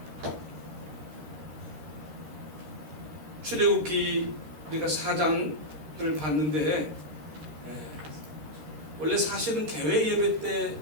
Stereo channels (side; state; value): left; late; 13 ms